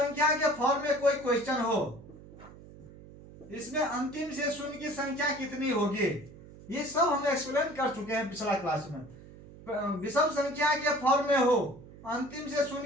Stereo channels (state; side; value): noise; right; hum, 19 dB below the sound